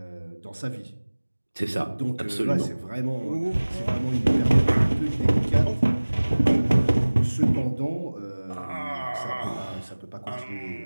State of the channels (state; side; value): inverted; both; correlation -1.00